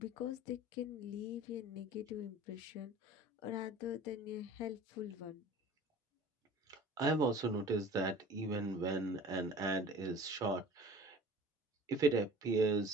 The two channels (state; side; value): normal; both; correlation 0.44